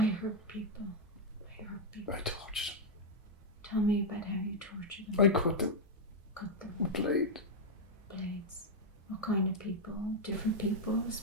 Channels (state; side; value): normal; both; correlation -0.02